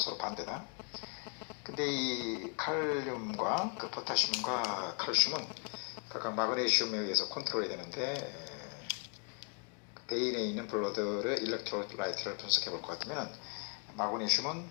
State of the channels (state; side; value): quieter; right; 38.1 dB